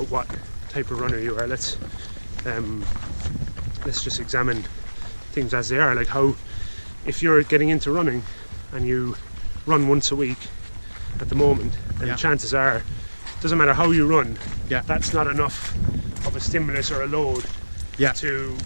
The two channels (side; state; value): both; inverted; correlation -1.00